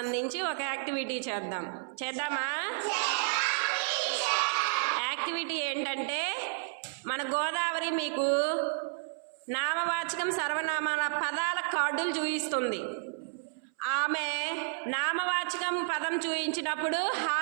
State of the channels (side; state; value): left; silent; 57 dB below the other